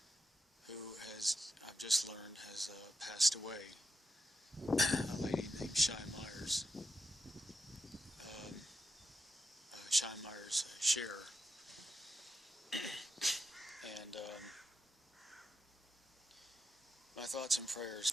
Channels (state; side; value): normal; both; correlation 0.85